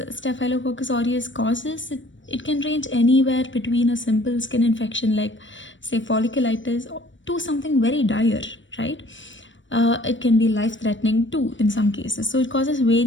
Staphylococcus aureus causes, it can range anywhere between a simple skin infection like say folliculitis to something very dire, right? It can be life-threatening too in some cases. So it causes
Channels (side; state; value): right; late; 0.55 ms